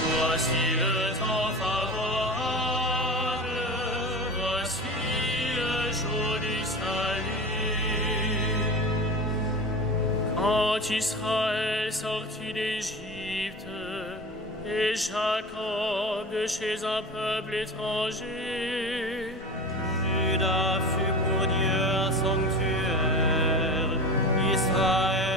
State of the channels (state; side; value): normal; both; correlation 0.30